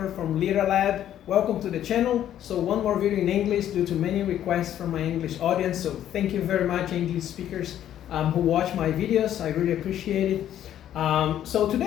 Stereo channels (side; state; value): right; quieter; 11.2 dB